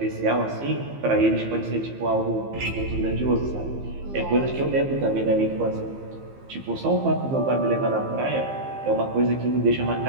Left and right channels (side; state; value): left; late; 15 ms